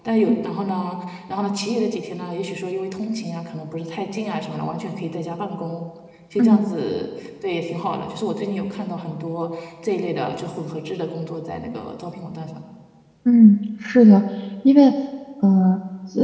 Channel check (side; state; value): both; identical; correlation 1.00